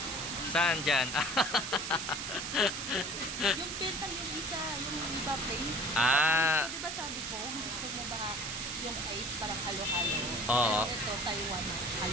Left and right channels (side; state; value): right; noise; hiss, 4 dB below the sound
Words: Saan dyan? Yung pentang yung isa, yung iba plain. Ah. Gusto, diba sabi ko, gusto mo ba yung ice parang halo-halo? Oo. Pero ito, Taiwan,